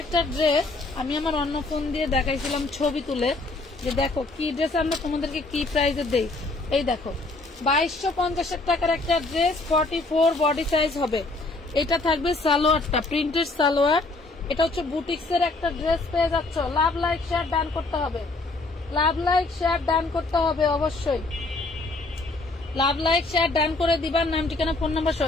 একটা ড্রেস আমি আমার অন্য ফোন দিয়ে দেখাইছিলাম ছবি তুলে, যে দেখো কি ড্রেস আমরা তোমাদেরকে কি প্রাইসে দেই। এই দেখো 2250 টাকার একটা ড্রেস, 44 বডি সাইজ হবে। এটা থাকবে সালোয়ারটা, প্রিন্টেড সালোয়ার। এটা হচ্ছে বুটিক্সের একটা ড্রেস পেয়ে যাচ্ছ। লাভ লাইক শেয়ার ডান করতে হবে, লাভ লাইক শেয়ার ডান করতে হবে, অবশ্যই লাভ লাইক শেয়ার ডান করে দিবার, নাম ঠিকানা ফোন নাম্বার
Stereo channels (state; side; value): quieter; right; 3.2 dB